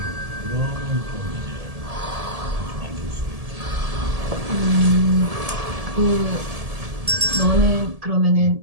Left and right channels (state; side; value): late; left; 1.7 ms